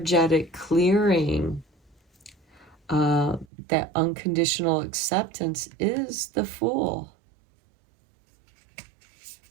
clearing. That unconditional acceptance is the Fool.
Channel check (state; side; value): drops out; left; at 3.5 s